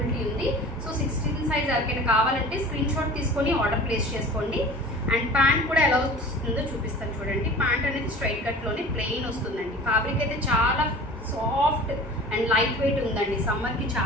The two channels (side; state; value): both; normal; correlation 0.41